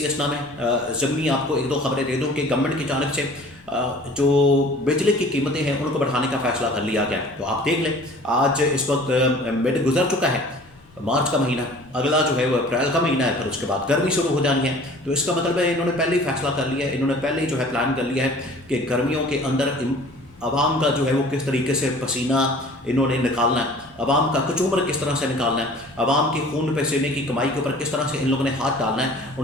اسنا میں ضمنی آپ کو ایک دو خبریں دے دوں کہ گورنمنٹ کی جانب سے جو بجلی کی قیمتیں ہیں ان کو بڑھانے کا فیصلہ کر لیا گیا. تو آپ دیکھ لیں آج اس وقت مڈ گزر چکا ہے، مارچ کا مہینہ، اگلا جو ہے وہ اپریل کا مہینہ ہے، پھر اس کے بعد گرمی شروع ہو جانی ہے. تو اس کا مطلب ہے انہوں نے پہلے ہی فیصلہ کر لیا ہے، انہوں نے پہلے ہی جو ہے پلان کر لیا ہے کہ گرمیوں کے اندر عوام کا جو ہے وہ کس طریقے سے پسینہ انہوں نے نکالنا ہے، عوام کا کچومر کس طرح سے نکالنا ہے، عوام کی خون پسینے کی کمائی کے اوپر کس طرح سے ان لوگوں نے ہاتھ ڈالنا ہے،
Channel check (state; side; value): noise; left; rumble, 27 dB below the sound